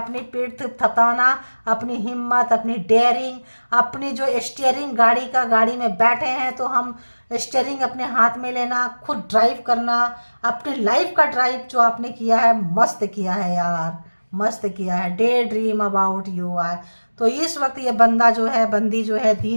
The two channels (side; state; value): both; inverted; correlation -1.00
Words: पीठ थपथपाना, अपनी हिम्मत, अपनी डेयरिंग, अपनी जो स्टीयरिंग गाड़ी में बैठे हैं, तो हम स्टीयरिंग अपने हाथ में लेना, खुद ड्राइव करना, अपनी लाइफ का ड्राइव जो आपने किया है, मस्त किया है यार, मस्त किया है। Day dream about you are, तो इस वक्त ये बंदी जो है